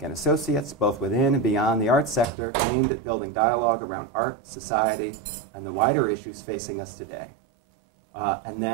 and associates, both within and beyond the arts sector, aimed at building dialogue around art, society, and the wider issues facing us today. And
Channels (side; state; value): left; drops out; at 2.3 s